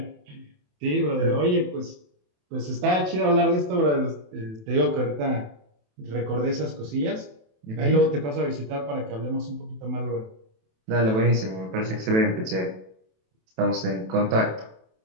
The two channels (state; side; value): late; left; 27 ms